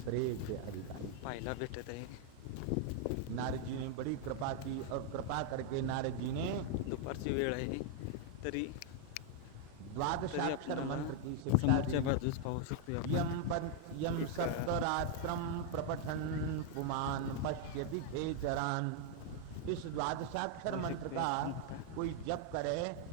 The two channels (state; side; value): different; both; correlation 0.00